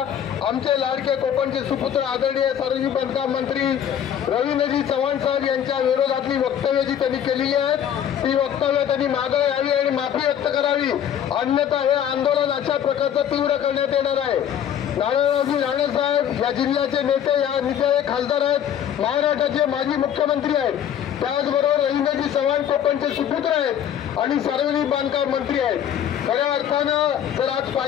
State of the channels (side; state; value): right; quieter; 9.5 dB